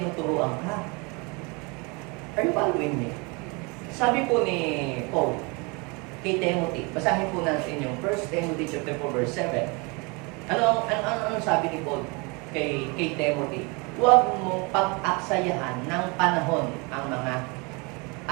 ka. Are you following me? Sabi po ni Paul kay Timothy, basahin po natin yung 1 Timothy chapter 4 verse 7. Ano sabi ni Paul kay Timothy? Huwag mong pag-aksayahan ng panahon ang mga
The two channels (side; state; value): left; quieter; 29.4 dB